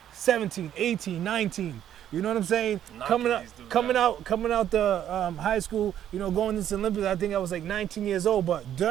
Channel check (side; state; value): left; quieter; 10.7 dB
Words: 17, 18, 19. You know what I'm saying? Coming out the high school, going into the Olympics, I think I was like 19 years old. But